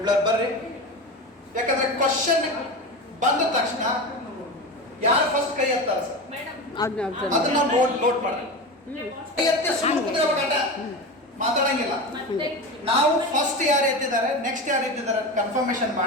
ಬರ್ರಿ. ಯಾಕಂದ್ರೆ ಕ್ವಶನ್ ಬಂದ ತಕ್ಷಣ ಯಾರು ಫಸ್ಟ್ ಕೈ ಎತ್ತಾರೆ ಸರ್ Madam, ಅದನ್ನ ನೋಟ್ ಮಾಡಿ. ಕೈ ಎತ್ತಿ ಸುಮ್ಮನೆ ಕೂತ್ಕೋಬೇಕಂತ ಮಾತಾಡಂಗಿಲ್ಲ. ಮತ್ತೆ ನಾವು ಫಸ್ಟ್ ಯಾರು ಎತ್ತಿದ್ದಾರೆ, ನೆಕ್ಸ್ಟ್ ಯಾರು ಎತ್ತಿದ್ದಾರೆ ಕನ್ಫರ್ಮೇಶನ್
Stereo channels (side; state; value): both; normal; correlation 0.24